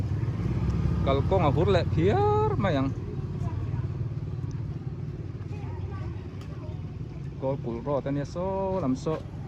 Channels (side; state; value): both; identical; correlation 1.00